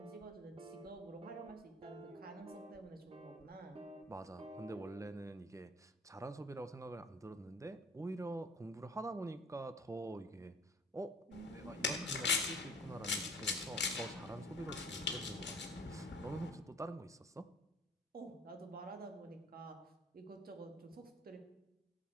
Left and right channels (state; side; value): normal; both; correlation 0.47